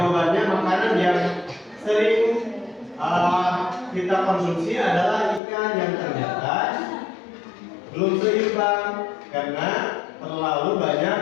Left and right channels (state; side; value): drops out; right; at 5.4 s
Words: makanan yang sering kita konsumsi adalah ikan, yang ternyata belum seimbang karena terlalu